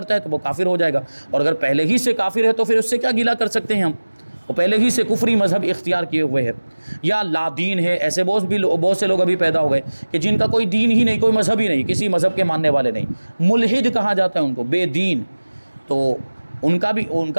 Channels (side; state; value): both; inverted; correlation -1.00